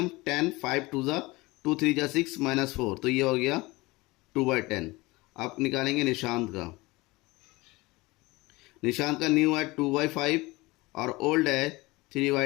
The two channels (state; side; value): quieter; right; 21.9 dB